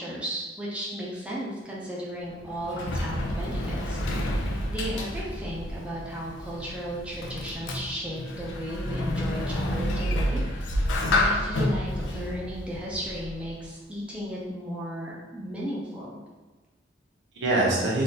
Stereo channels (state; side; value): normal; both; correlation 0.57